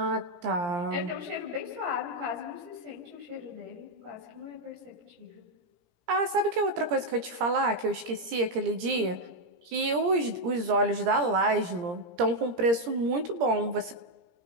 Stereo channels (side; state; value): left; late; 17 ms